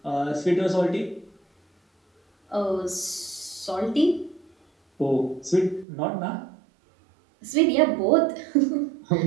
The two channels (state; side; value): drops out; left; at 5.9 s